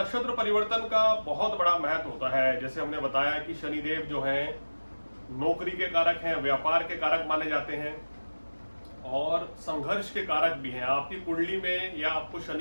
परिवर्तन का बहुत बड़ा महत्व होता है। जैसे हमने बताया कि शनिदेव जो है नौकरी के कारक हैं, व्यापार के कारक माने जाते हैं और संघर्ष के कारक भी हैं। आपकी कुंडली में या आपको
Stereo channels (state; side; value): inverted; both; correlation -1.00